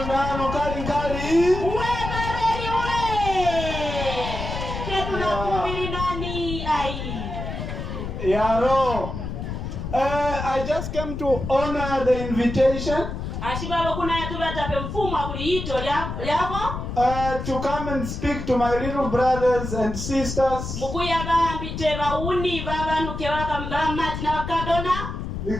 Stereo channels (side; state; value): left; noise; rumble, 6 dB below the sound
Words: Yaro. I just came to honor the invitation. To come and speak to my little brothers and sisters.